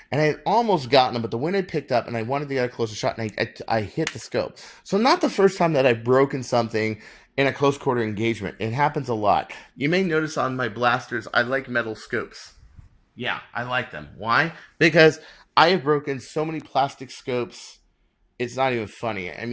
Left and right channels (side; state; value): both; identical; correlation 1.00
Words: and I had almost gotten them, but the wind had picked up and I wanted to get a closer shot and I hit the scope. So not the first time that I've broken something in a close quarter engagement. It happens a lot. You may notice on my blasters, I like metal scopes. Yeah, I like them. Why? Because I have broken so many plastic scopes. It's not even funny. I